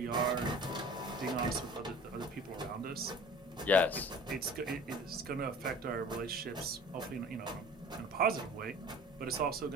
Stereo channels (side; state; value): both; normal; correlation 0.44